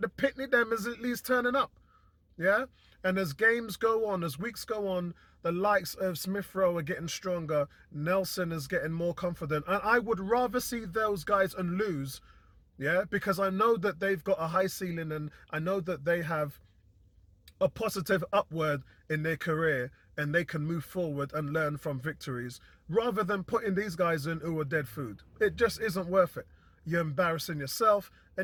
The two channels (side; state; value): both; identical; correlation 1.00